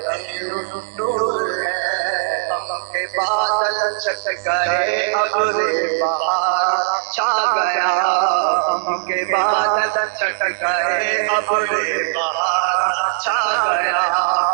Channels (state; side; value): silent; left; digital silence